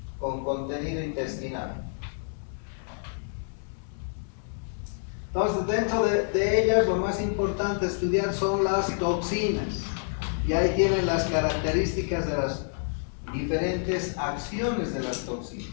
con contenido intestinal. Entonces, dentro de ellas, lo más importante estudiar son las toxinas. Y ahí tienen las características de las diferentes acciones de las toxinas.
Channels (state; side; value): silent; right; 59 dB below the other